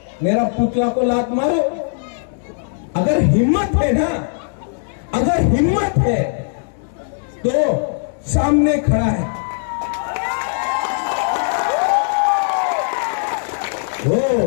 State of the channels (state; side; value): silent; right; digital silence